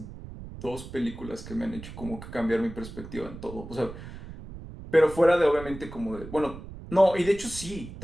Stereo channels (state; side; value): noise; right; rumble, 13 dB below the sound